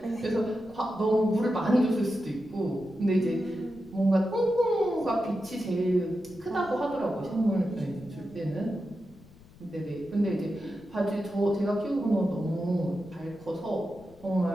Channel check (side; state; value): left; noise; rumble, 23 dB below the sound